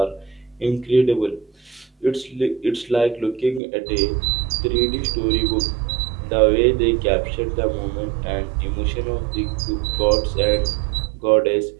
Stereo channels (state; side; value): drops out; left; at 3.6 s